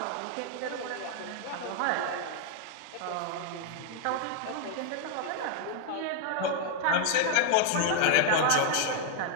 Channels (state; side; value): different; both; correlation 0.00